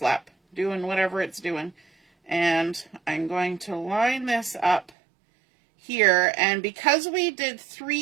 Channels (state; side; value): drops out; left; at 4.9 s